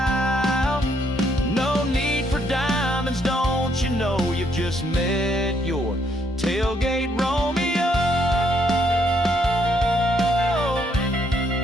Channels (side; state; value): both; normal; correlation 0.72